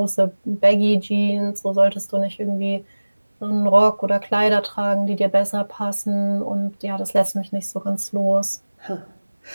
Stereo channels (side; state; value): both; inverted; correlation -1.00